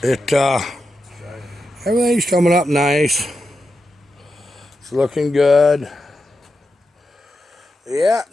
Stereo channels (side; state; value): both; normal; correlation 0.88